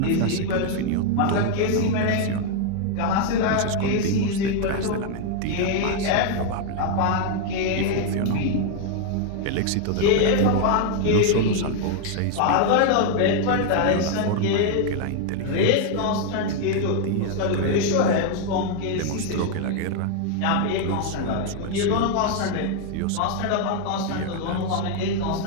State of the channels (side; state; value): both; different; correlation 0.01